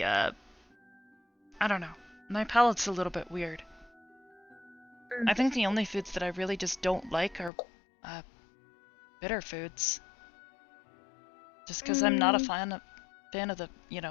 I don't know. My palate's a little bit weird. I think the only foods that I really just don't like are bitter foods. Just because I'm not a fan of the, you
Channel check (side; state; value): right; drops out; at 7.5 s